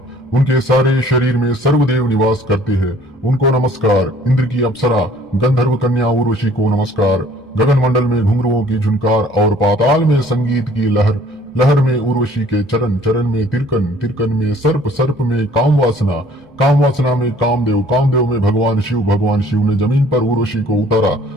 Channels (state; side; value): normal; both; correlation 0.56